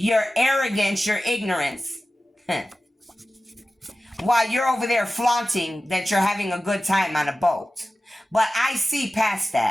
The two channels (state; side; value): normal; both; correlation 0.95